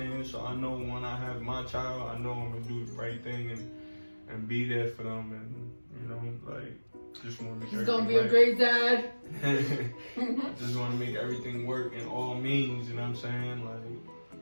So I know when I have my child, I know I'm gonna do the right thing and be there for them, and you know, like, just want to make He's gonna be everything a great dad. I just want to make everything work in all means, you know what I'm saying? Like,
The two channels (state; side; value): inverted; both; correlation -1.00